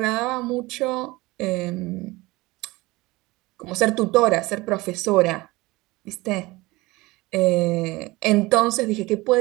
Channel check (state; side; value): quieter; left; 21.3 dB